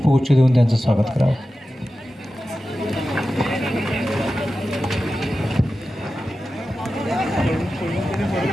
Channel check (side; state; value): both; normal; correlation 0.93